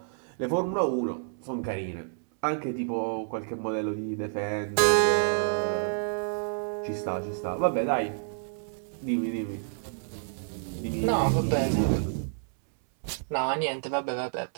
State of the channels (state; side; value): silent; left; 59 dB below the other